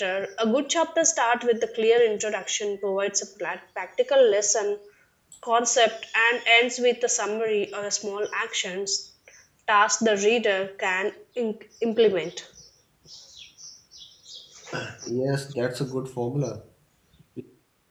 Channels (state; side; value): identical; both; correlation 1.00